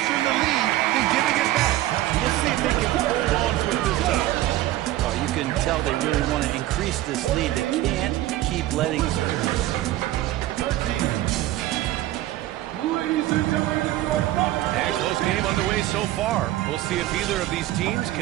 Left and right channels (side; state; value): left; quieter; 15.2 dB